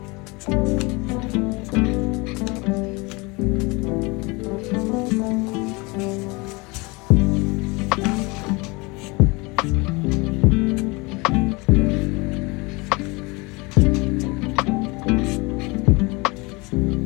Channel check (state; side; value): quieter; right; 26.1 dB